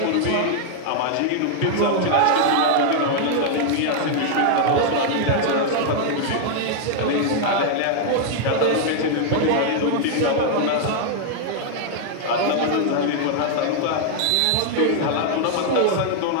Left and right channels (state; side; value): different; both; correlation 0.00